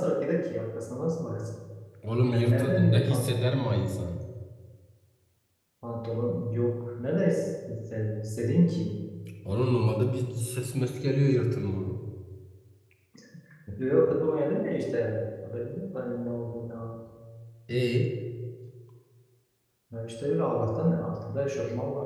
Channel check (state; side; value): identical; both; correlation 1.00